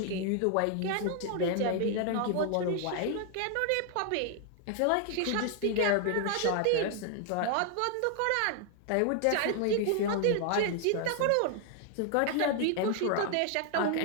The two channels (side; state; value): both; different; correlation 0.00